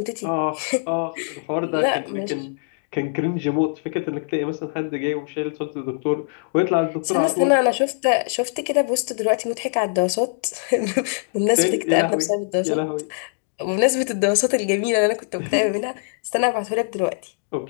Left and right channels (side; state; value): right; silent; digital silence